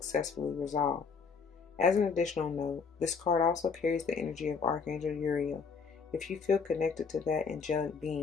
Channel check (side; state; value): right; quieter; 5.5 dB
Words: resolve. As an additional note, this card also carries the energy of Archangel Uriel. If you feel connected to that angelic